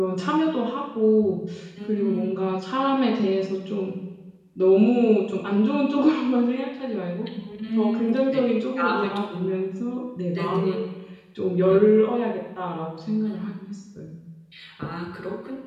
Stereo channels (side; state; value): both; identical; correlation 1.00